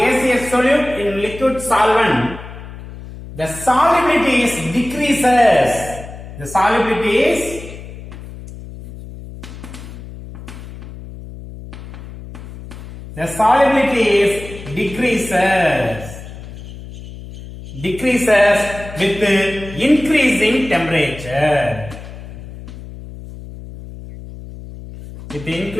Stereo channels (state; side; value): noise; left; hum, 14 dB below the sound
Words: solute in liquid solvent, the solubility is decreases. The solubility is decreases with increasing temperature. With